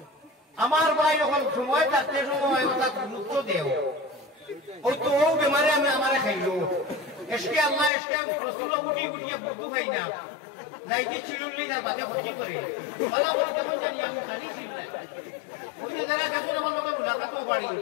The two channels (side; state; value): right; drops out; at 7.9 s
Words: আমার ভাই যখন সময় থাকতে সময় ওটা গুরুত্ব দেও ওই তো ও বেমারে আমি আমারে খাইলো এসকে আল্লাহ এসকে রসুল গুটি গুটিয়ে বুদ্ধু খাই না লাইটি চিড়ুল্লি তার বাদে ক্ষতি করে বলা বলি কেমন জানি আমি খালি চিল্লাই ওই যে যারা দেখুন আমার লোকে মুলাকাতও পারি